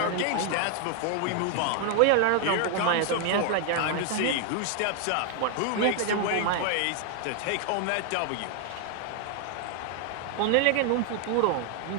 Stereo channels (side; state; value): both; different; correlation 0.00